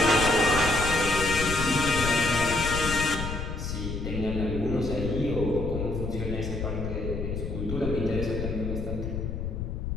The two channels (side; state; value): left; noise; rumble, 4 dB below the sound